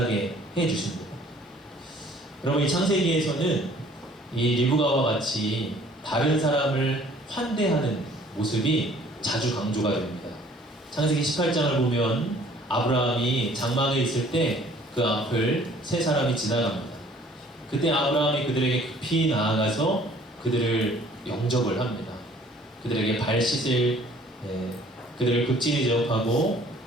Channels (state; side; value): normal; both; correlation 0.55